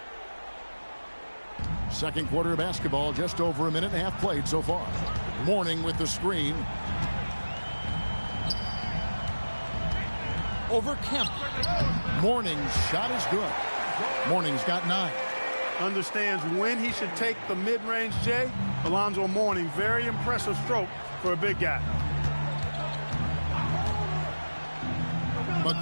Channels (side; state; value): both; inverted; correlation -1.00